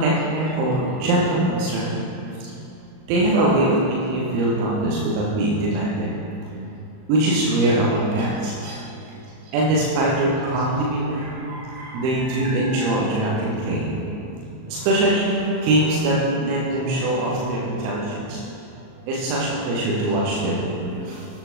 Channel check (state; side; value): late; left; 38 ms